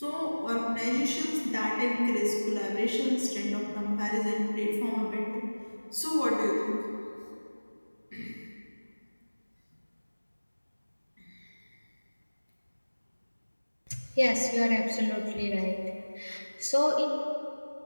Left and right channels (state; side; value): inverted; both; correlation -1.00